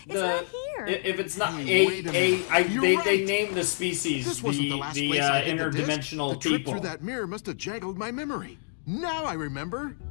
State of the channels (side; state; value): right; silent; digital silence